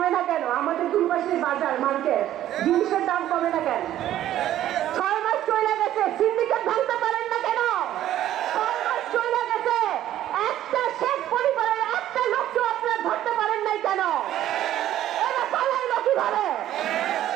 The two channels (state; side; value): quieter; left; 12.6 dB